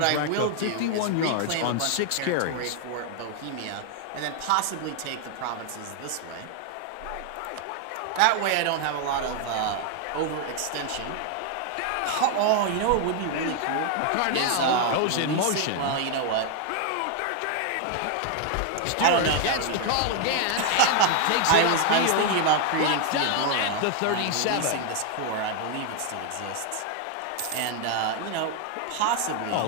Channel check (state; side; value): different; both; correlation 0.00